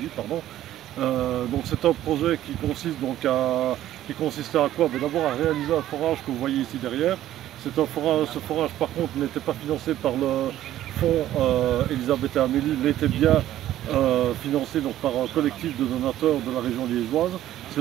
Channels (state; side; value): quieter; left; 13.1 dB